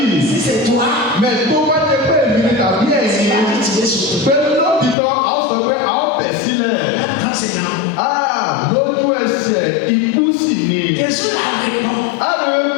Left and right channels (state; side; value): drops out; right; at 5.0 s